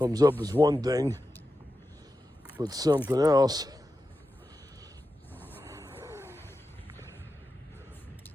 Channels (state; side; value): normal; both; correlation 0.91